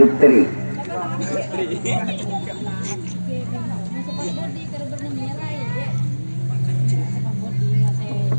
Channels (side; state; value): both; inverted; correlation -1.00